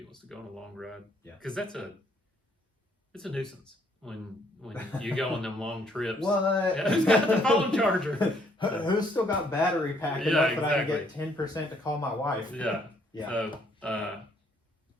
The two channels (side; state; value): both; normal; correlation 0.67